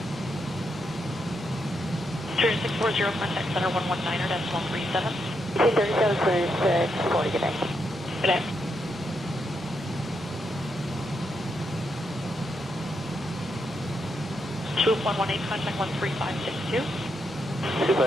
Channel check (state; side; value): normal; both; correlation 0.81